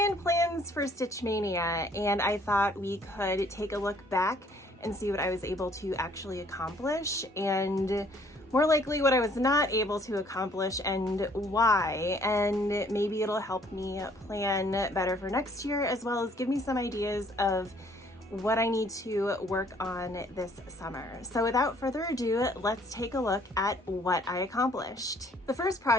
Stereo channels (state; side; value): normal; both; correlation 0.61